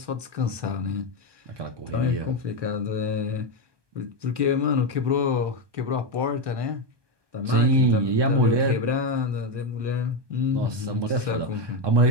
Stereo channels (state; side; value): late; left; 1.2 ms